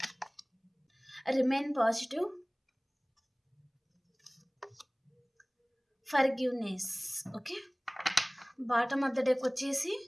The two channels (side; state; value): both; identical; correlation 1.00